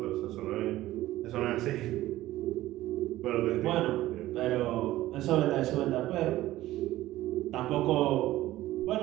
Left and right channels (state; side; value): quieter; left; 15.6 dB